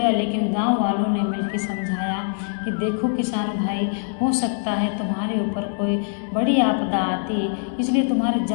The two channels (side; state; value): right; silent; digital silence